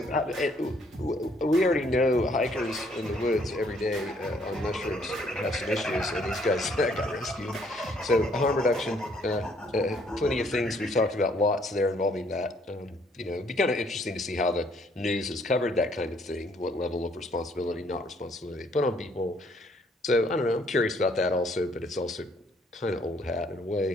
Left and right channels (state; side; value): normal; both; correlation 0.65